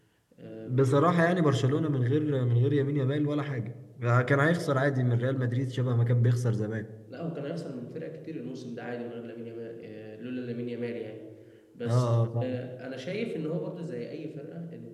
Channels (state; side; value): identical; both; correlation 1.00